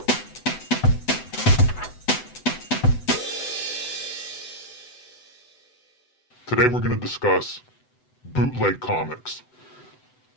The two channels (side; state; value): right; late; 7.9 ms